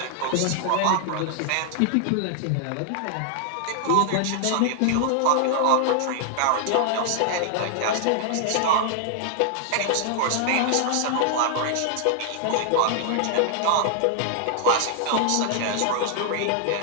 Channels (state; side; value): different; both; correlation 0.00